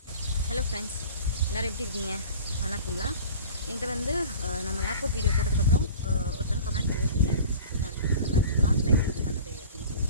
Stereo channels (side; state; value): both; inverted; correlation -0.42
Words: ஹலோ ஃப்ரெண்ட்ஸ், எல்லோரும் எப்படி இருக்கீங்க? நல்லா இருக்கீங்களா? என்கிட்ட வந்து நம்ம ஏர்போர்ட் வீடியோ போட்டதுக்கப்புறம் ஒருத்தவங்க கமெண்ட் பண்ணியிருக்கீங்க, நம்ம லான்ச் லைஃப் யூஸ் பண்ணுறது அப்படின்னு